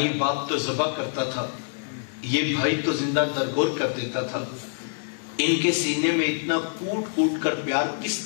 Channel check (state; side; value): silent; right; digital silence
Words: باپ تو ذبح کرتا تھا، یہ بھائی تو زندہ درگور کر دیتا تھا۔ ان کے سینے میں اتنا کوٹ کوٹ کر پیار کس